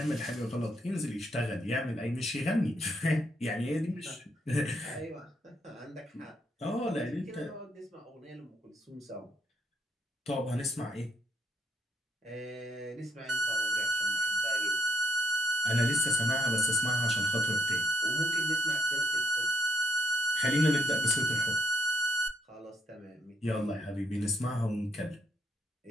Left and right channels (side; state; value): both; normal; correlation 0.73